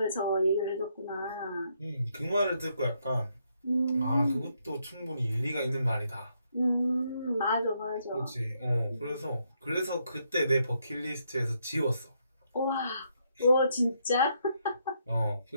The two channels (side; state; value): both; inverted; correlation -0.76